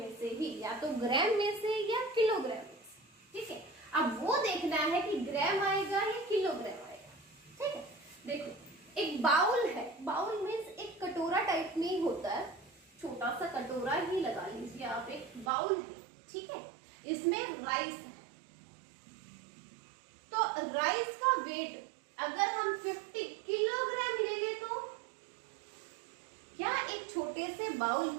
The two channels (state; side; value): drops out; left; at 15.5 s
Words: से ही, या तो ग्राम में से या किलोग्राम में से। ठीक है, अब वो देखना है कि ग्राम आएगा या किलोग्राम आएगा। ठीक है, देखो एक बाउल है, बाउल में एक कटोरा टाइप में ही होता है, छोटा सा कटोरा ही लगा लीजिए आप, एक बाउल है। ठीक है, इसमें राइस है, तो राइस का वेट अगर हम 50 किलोग्राम ले ले तो क्या एक छोटे से बाउल